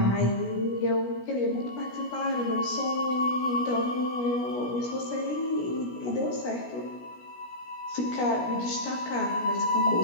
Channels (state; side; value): late; right; 17 ms